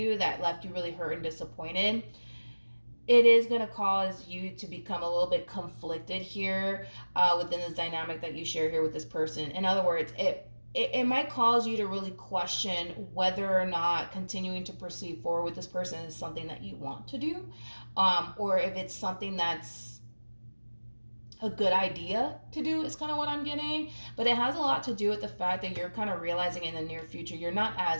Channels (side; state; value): both; inverted; correlation -1.00